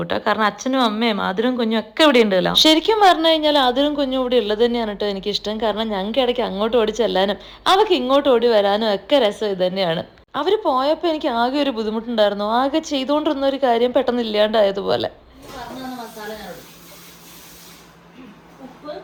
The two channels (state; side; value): identical; both; correlation 1.00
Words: കേട്ടോ. കാരണം അച്ഛനും അമ്മയും ആതിരും കുഞ്ഞും ഒക്കെ ഇവിടെ ഉണ്ട്. ശരിക്കും പറഞ്ഞു കഴിഞ്ഞാൽ ആതിരും കുഞ്ഞും ഇവിടെ ഉള്ളത് തന്നെയാണ് കേട്ടോ എനിക്കിഷ്ടം. കാരണം ഞങ്ങൾക്ക് ഇടയ്ക്ക് അങ്ങോട്ട് ഓടി ചെല്ലാനും അവർക്ക് ഇങ്ങോട്ട് ഓടി വരാനും ഒക്കെ രസം ഇത് തന്നെയാണ്. അവർ പോയപ്പോൾ എനിക്ക് ആകെ ഒരു ബുദ്ധിമുട്ടുണ്ടായിരുന്നു. ആകെ ചെയ്തുകൊണ്ടിരുന്ന ഒരു കാര്യം പെട്ടെന്ന് ഇല്ലാണ്ടായതുപോലെ.